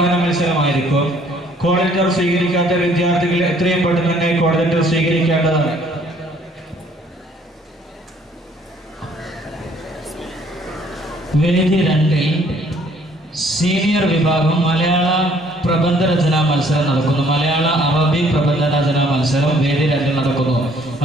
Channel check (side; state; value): both; normal; correlation 0.61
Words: മത്സരമായിരിക്കും. കോൾ ലെറ്റർ സ്വീകരിക്കാത്ത വിദ്യാർത്ഥികൾ എത്രയും പെട്ടെന്ന് തന്നെ കോൾ ലെറ്റർ സ്വീകരിക്കേണ്ടതാണ്. വേദി 2 സീനിയർ വിഭാഗം മലയാള പ്രബന്ധ രചനാ മത്സരം നടക്കുന്നു. മലയാള അറബി പ്രബന്ധ രചനാ മത്സരം വേദി 2 നടക്കുന്നു.